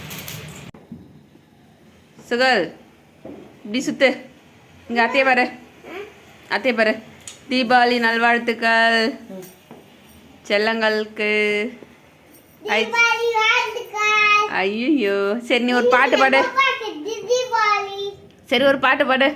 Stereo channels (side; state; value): both; identical; correlation 1.00